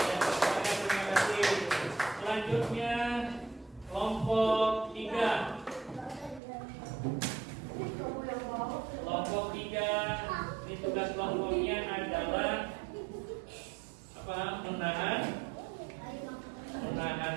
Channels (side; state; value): left; drops out; at 6.4 s